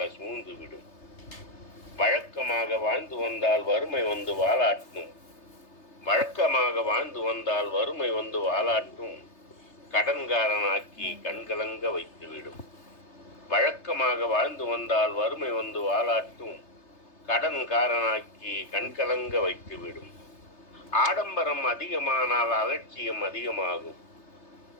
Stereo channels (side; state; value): right; late; 3.3 ms